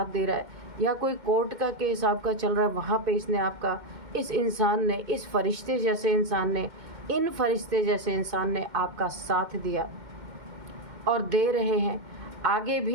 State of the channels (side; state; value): left; late; 2.1 ms